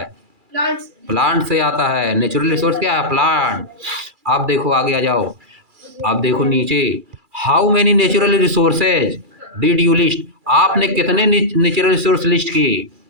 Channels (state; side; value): late; left; 2.3 ms